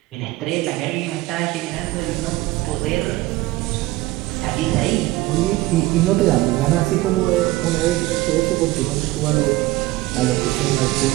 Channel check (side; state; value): left; quieter; 18.4 dB